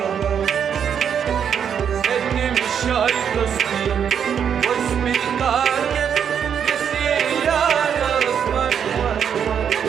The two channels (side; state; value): left; quieter; 8.0 dB